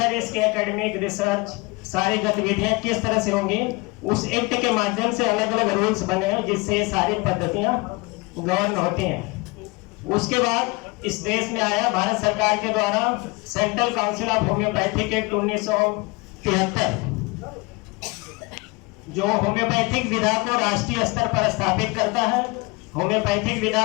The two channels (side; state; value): right; quieter; 26.2 dB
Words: इसके एकेडमिक रिसर्च, सारी गतिविधियां किस तरह से होंगी, उस एक्ट के माध्यम से अलग अलग रूल्स बने हैं जिससे ये सारी पद्धतियां गवर्न होती हैं। उसके बाद इस देश में आया भारत सरकार के द्वारा central council of homeopathic act 1973, जो होम्योपैथिक विधा को राष्ट्रीय स्तर पर स्थापित करता है, होम्योपैथिक